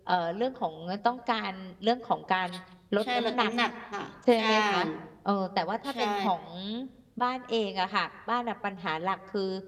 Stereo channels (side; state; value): both; identical; correlation 1.00